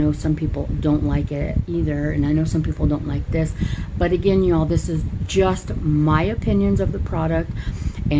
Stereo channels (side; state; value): both; identical; correlation 1.00